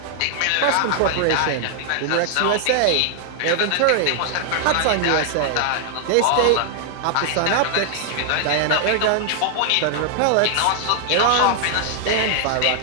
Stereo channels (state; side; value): different; both; correlation 0.00